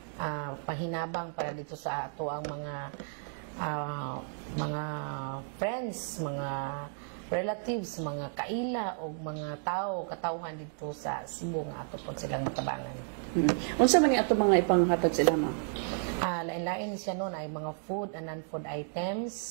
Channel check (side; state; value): left; silent; 56 dB below the other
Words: pahinabang para dito sa ato ang mga friends, mga relatives, mga kaila o mga katawhan dito sa Cebu nga ato po silang matabangan. Unsa man ni ato mga ipanghatag sila, Ma'am? Lain-lain siya noon ay mga food and non-food